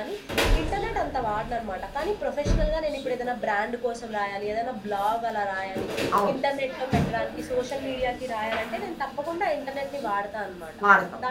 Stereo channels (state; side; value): identical; both; correlation 1.00